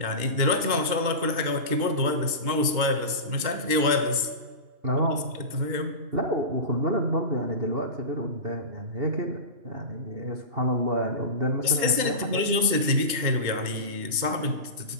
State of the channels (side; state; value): left; late; 2.9 ms